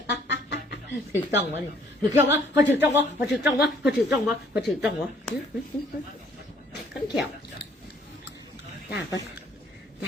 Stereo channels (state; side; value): normal; both; correlation 0.61